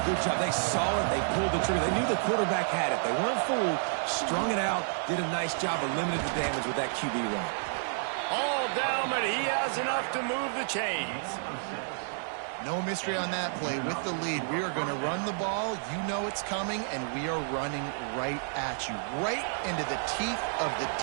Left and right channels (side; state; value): left; silent; digital silence